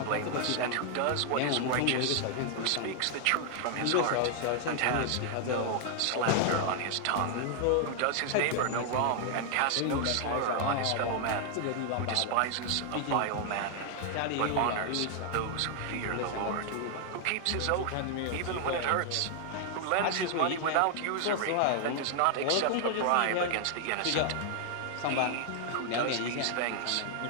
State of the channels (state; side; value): different; both; correlation 0.00